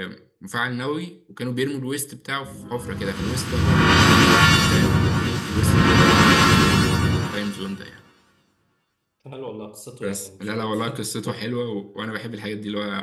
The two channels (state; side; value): identical; both; correlation 1.00